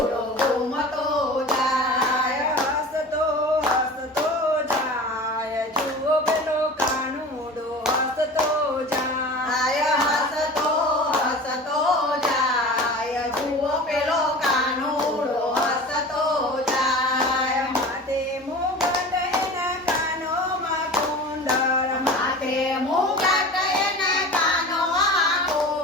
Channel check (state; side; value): normal; both; correlation 0.36